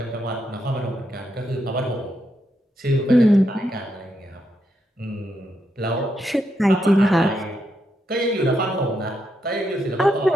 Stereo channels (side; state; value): both; normal; correlation 0.81